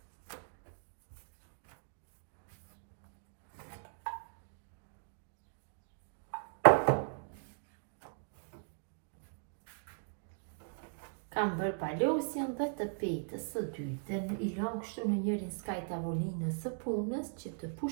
Kam bërë palosjen dhe të petës së dytë, i lëm kështu në njërin skaj tavolinës së punës që të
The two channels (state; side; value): silent; left; digital silence